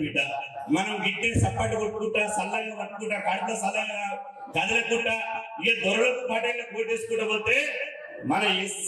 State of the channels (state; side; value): identical; both; correlation 1.00